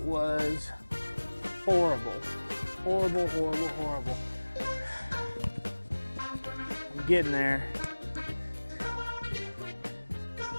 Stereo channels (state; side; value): inverted; both; correlation -1.00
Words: horrible. Horrible, horrible, horrible. I'm getting there.